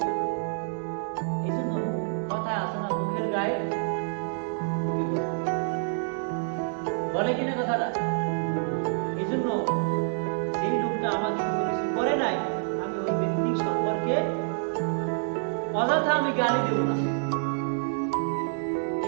এই জন্য কথা আছে না, মুখের গায়ে বলে কিনা কথাটা? এই জন্য সেই লোকটা আমাকে কোনো কিছু করে নাই, আমি ওই ব্যক্তি সম্পর্কে অযথা আমি গালি দেব না।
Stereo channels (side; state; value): left; silent; digital silence